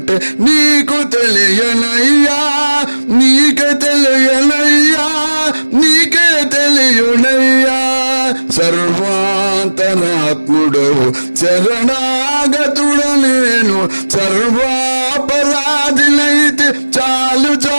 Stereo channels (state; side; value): inverted; both; correlation -1.00